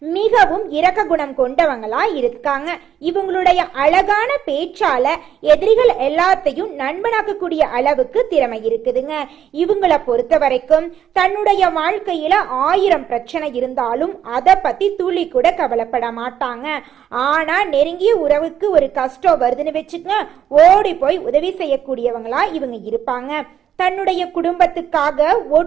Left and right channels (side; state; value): left; quieter; 9.6 dB